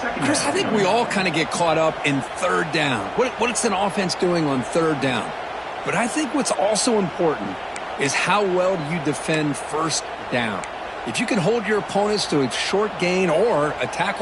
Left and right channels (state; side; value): identical; both; correlation 1.00